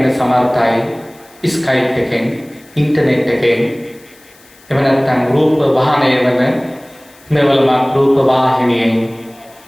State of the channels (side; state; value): left; noise; hiss, 28 dB below the sound